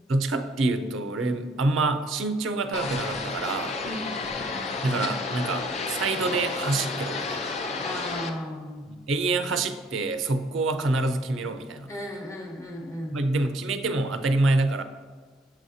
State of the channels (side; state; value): both; normal; correlation 0.60